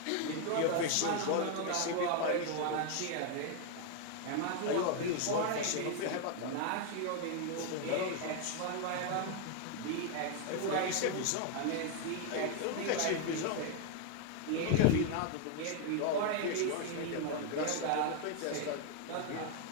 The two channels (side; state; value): both; different; correlation 0.01